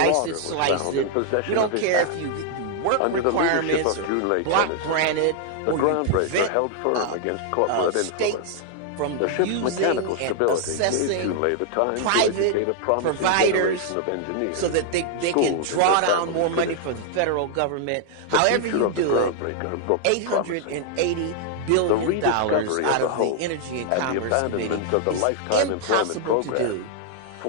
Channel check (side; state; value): both; different; correlation 0.00